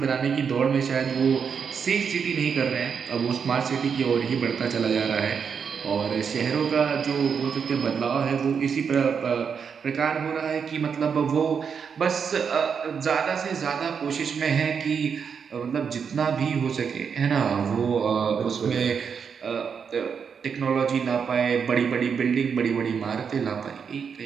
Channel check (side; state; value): left; quieter; 6.6 dB